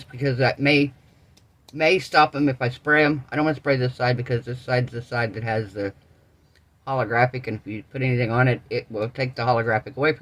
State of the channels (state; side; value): identical; both; correlation 1.00